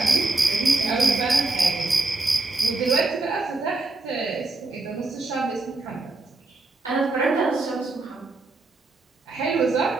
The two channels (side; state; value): left; quieter; 3.2 dB